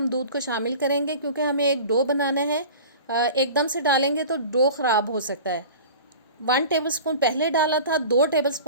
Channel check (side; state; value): both; inverted; correlation -0.39